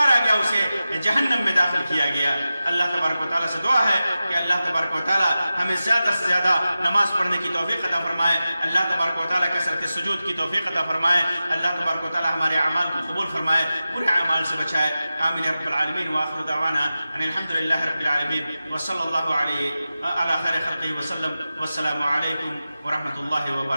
گیا، اسے جہنم میں داخل کیا گیا۔ اللہ تبارک و تعالیٰ سے دعا ہے کہ اللہ تبارک و تعالیٰ ہمیں زیادہ سے زیادہ نماز پڑھنے کی توفیق عطا فرمائے، اللہ تبارک و تعالیٰ کثرت سجود کی توفیق عطا فرمائے، اللہ تبارک و تعالیٰ ہمارے اعمال کو قبول فرمائے، برے اعمال سے بچائے۔ آمین یا رب العالمین، وآخر دعوانا ان الحمد للہ رب العالمین، وصلی اللہ علیہ علی خیر خلقہ وسلم، والسلام علیکم ورحمۃ اللہ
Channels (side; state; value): both; inverted; correlation -0.94